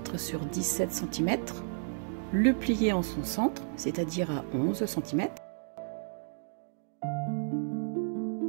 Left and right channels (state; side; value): silent; left; digital silence